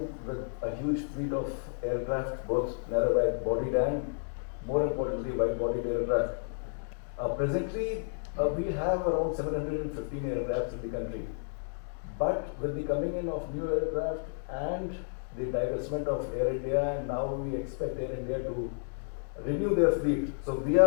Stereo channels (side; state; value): right; silent; digital silence